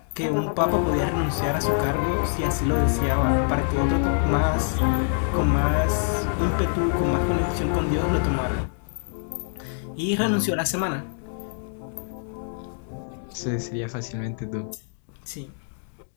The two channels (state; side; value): silent; right; 62 dB below the other